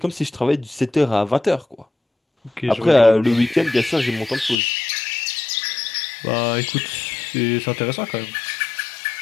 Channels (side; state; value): right; drops out; at 4.5 s